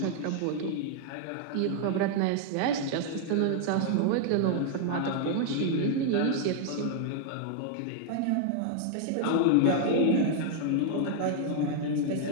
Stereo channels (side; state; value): both; different; correlation 0.00